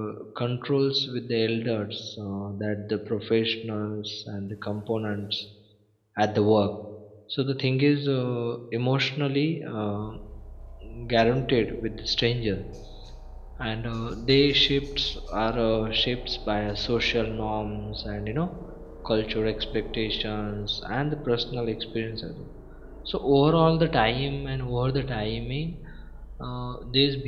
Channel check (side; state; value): both; identical; correlation 1.00